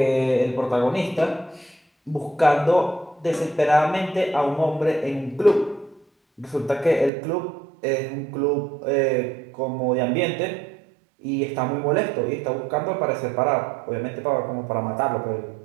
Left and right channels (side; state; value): left; drops out; at 7.1 s